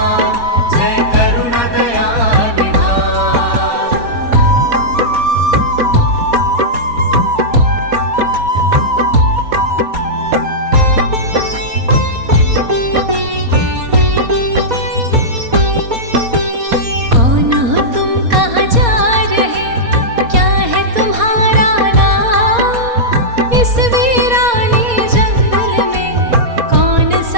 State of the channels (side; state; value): left; late; 4.2 ms